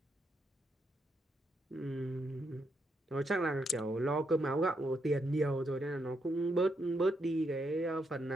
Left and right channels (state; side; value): normal; both; correlation 0.79